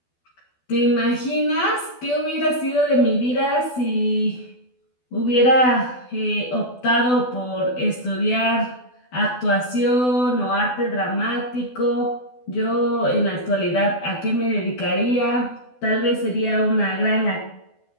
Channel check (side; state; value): right; late; 12 ms